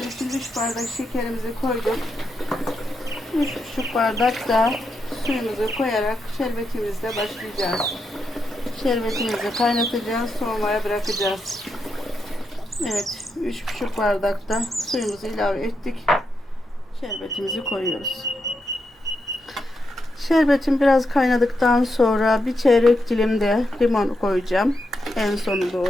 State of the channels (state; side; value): normal; both; correlation 0.84